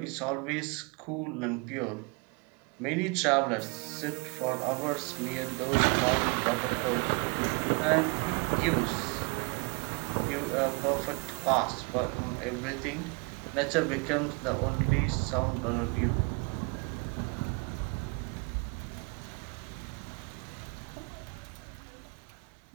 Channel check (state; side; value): quieter; left; 31.6 dB